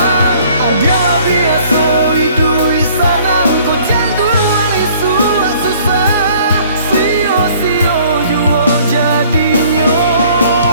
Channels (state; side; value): inverted; both; correlation -0.57